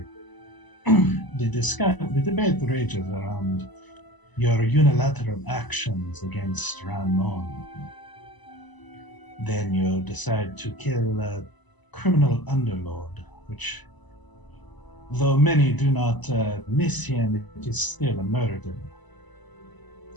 the debate rages around your unilateral actions against Ranmon. Then you decide to kill a criminal underlord, which, though many do not miss him, it is still a murder.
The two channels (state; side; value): late; right; 1.0 ms